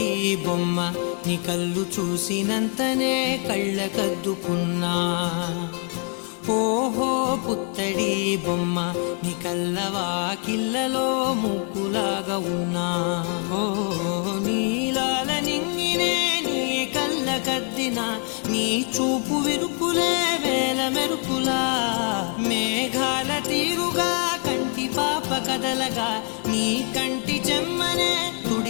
బొమ్మ నీ కళ్ళు చూసినంతనే కళ్ళకద్దుకున్నా. ఓహో పుత్తడి బొమ్మ నీ కళ్ళవాకిళ్ళలో ముగ్గులాగా ఉన్నా. ఓ నీలాల నింగినే నీ కళ్ళకద్దిన నీ చూపు విరుపులే వేల మెరుపులా. మేఘాల తీరుగా కంటి పాప కదలగా నీ కంటి చెమ్మనే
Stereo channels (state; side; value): quieter; right; 39.3 dB